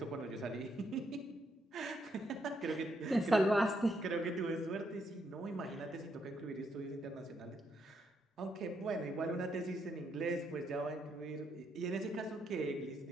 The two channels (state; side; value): normal; both; correlation 0.77